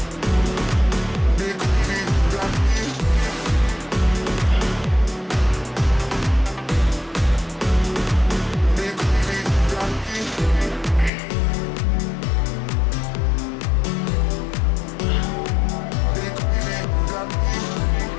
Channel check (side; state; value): right; drops out; at 11.1 s